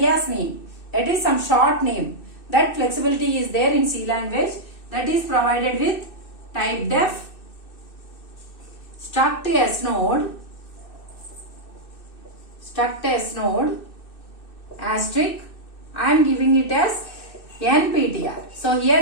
name, that is some short name. That flexibility is there in C language, that is provided with type def struct S node asterisk. I am giving it as NPTR. So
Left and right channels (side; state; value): right; late; 2.6 ms